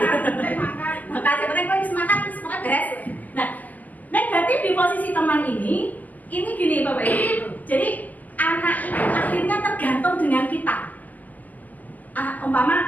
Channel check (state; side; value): late; right; 0.081 ms